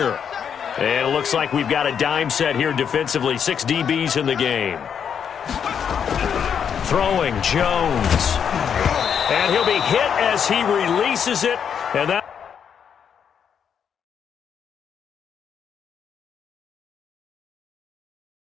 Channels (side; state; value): right; quieter; 7.7 dB